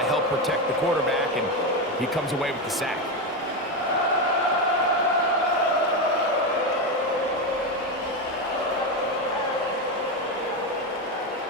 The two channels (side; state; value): both; normal; correlation 0.12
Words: help protect the quarterback, and he comes away with the sack.